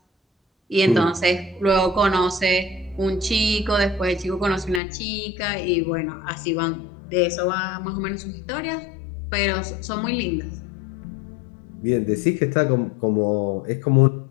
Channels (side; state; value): right; drops out; at 4.8 s